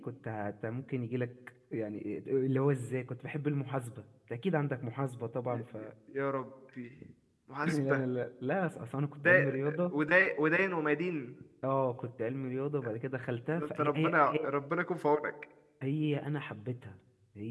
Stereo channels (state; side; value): identical; both; correlation 1.00